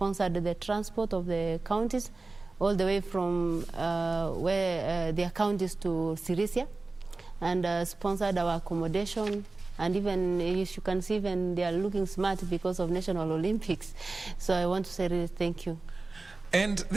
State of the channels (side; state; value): left; quieter; 3.5 dB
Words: the transport of the counties all the way from where their counties to Sirisia, and sponsored our accommodation. And even, as you can see, even they are looking smart because of National Olympics. So I want to say really thank you. And